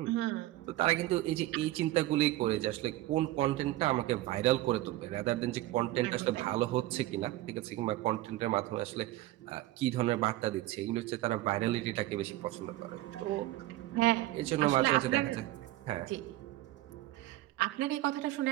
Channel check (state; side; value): quieter; left; 16.5 dB